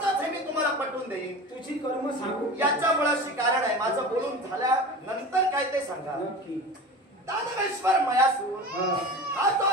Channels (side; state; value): both; normal; correlation 0.33